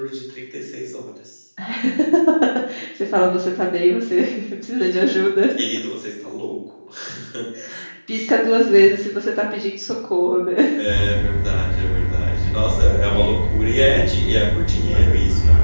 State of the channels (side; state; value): both; inverted; correlation -1.00